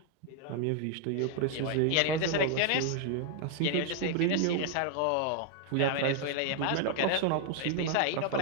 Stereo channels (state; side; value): different; both; correlation 0.00